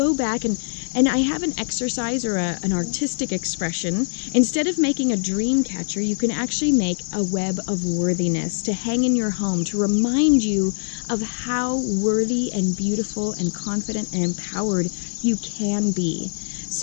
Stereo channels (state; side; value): silent; right; 64 dB below the other